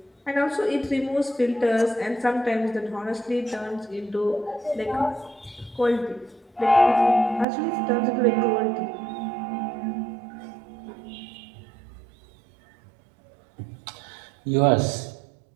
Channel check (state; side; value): drops out; left; at 7.5 s